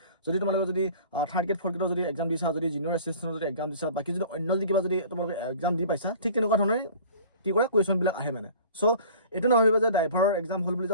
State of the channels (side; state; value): both; inverted; correlation -0.46